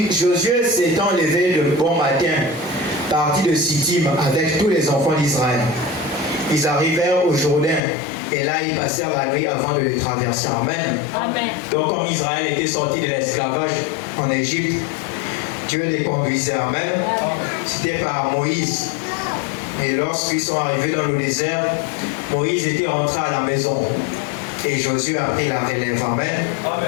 Josué s'étant levé de bon matin, partit de Sittim avec tous les enfants d'Israël. Ils arrivèrent au Jourdain et là ils passèrent la nuit avant de le traverser. Amen. Amen. Donc comme Israël était sorti de l'esclavage en Égypte, Dieu les conduisait. Amen. C'était par Moïse. Et lorsqu'ils sont arrivés dans le désert, Moïse était rentré à la maison. Et Josué a pris la relève. Amen.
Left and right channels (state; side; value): drops out; right; at 7.8 s